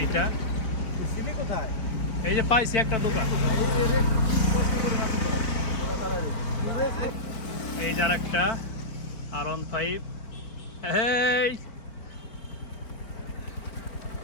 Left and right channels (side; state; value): right; late; 4.4 ms